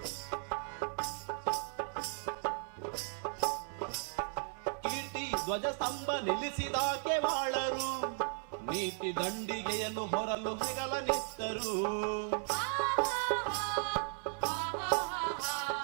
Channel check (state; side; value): silent; left; 54 dB below the other